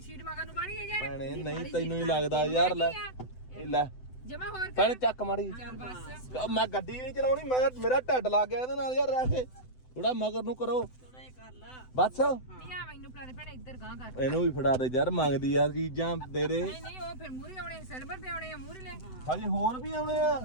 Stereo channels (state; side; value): late; right; 7.9 ms